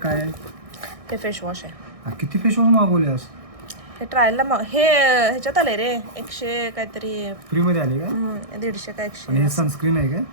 आहे? हे फेस वॉश आहे. किती फेस वॉश मागवल्यास? हे ट्रायलला हे ह्याच्यात आले रे 100 काहीतरी फ्री मध्ये आले का? 150 का 100. आणि हे सनस्क्रीन आहे का?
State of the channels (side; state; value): left; late; 1.6 ms